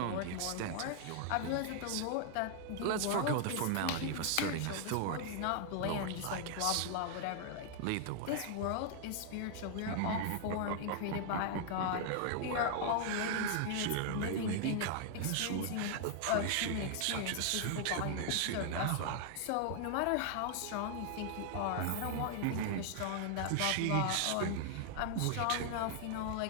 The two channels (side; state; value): both; different; correlation 0.00